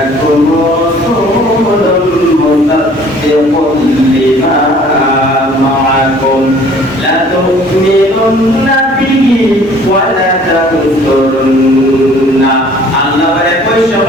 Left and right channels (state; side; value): normal; both; correlation 0.53